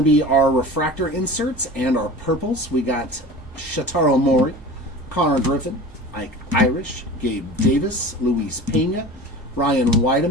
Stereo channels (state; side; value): normal; both; correlation 0.37